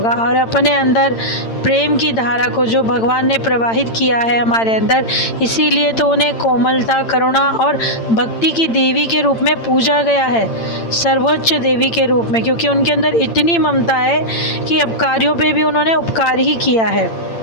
और अपने अंदर प्रेम की धारा को जो भगवान ने प्रवाहित किया है हमारे अंदर, इसीलिए तो उन्हें कोमलता, करुणा और भक्ति की देवी के रूप में पूजा गया है, सर्वोच्च देवी के रूप में, क्योंकि उनके अंदर इतनी ममता है कि अपकारियों पे भी उन्होंने उपकार ही किया है।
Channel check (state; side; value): late; right; 8.9 ms